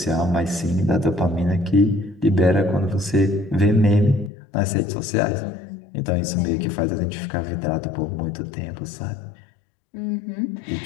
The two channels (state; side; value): drops out; right; at 4.3 s